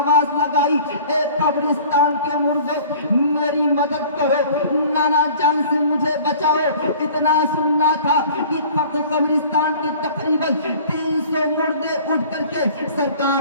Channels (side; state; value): both; inverted; correlation -0.47